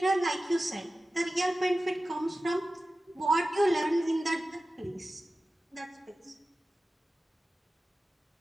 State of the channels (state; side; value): normal; both; correlation 0.95